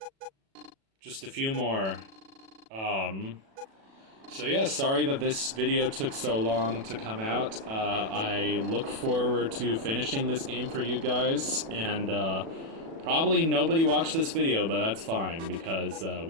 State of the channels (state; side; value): late; left; 36 ms